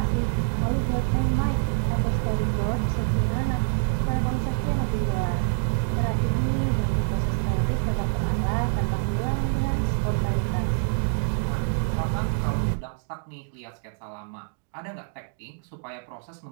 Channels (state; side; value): silent; left; digital silence